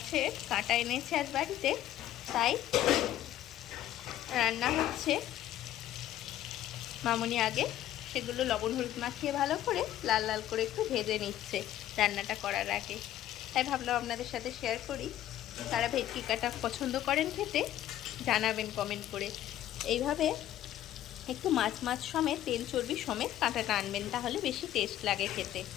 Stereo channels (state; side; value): quieter; right; 12.8 dB